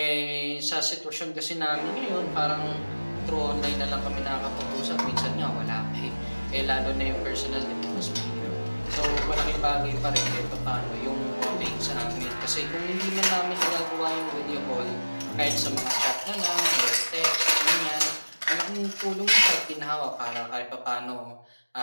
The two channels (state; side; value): inverted; both; correlation -1.00